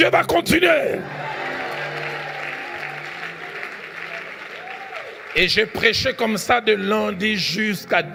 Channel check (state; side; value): identical; both; correlation 1.00